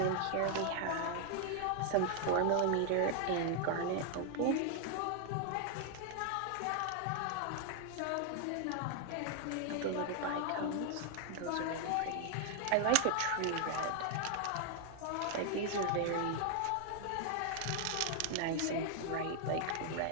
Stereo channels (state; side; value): different; both; correlation 0.00